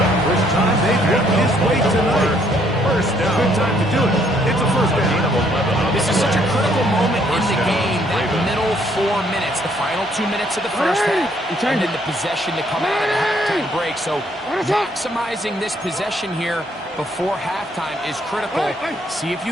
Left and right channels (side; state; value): both; normal; correlation 0.67